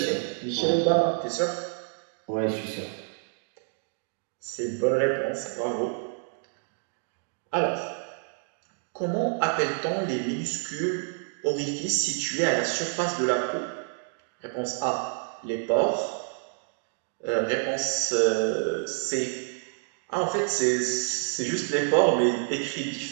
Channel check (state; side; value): silent; left; 59 dB below the other